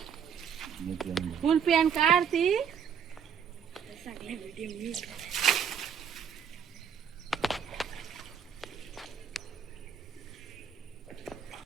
फुल पॅन्ट काढ ती.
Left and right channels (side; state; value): left; quieter; 7.5 dB